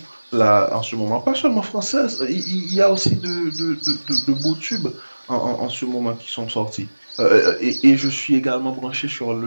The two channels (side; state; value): both; inverted; correlation -1.00